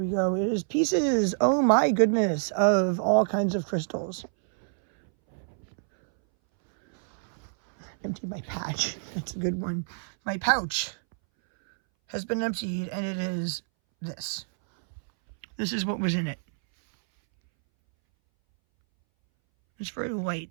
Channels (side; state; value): left; silent; 60 dB below the other